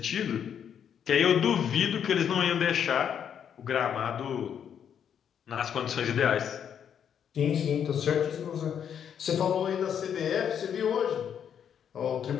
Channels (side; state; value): right; quieter; 8.4 dB